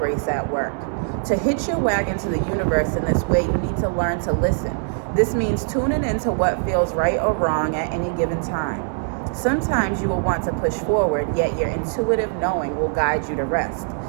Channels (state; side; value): silent; left; 64 dB below the other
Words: at work. To hitch your wagon to the universe in this way, you need to learn to listen. This means tuning into what feels right or wrong at any given time. Sometimes you will want to push forward, yet your intuitive knowing will guide you to rest.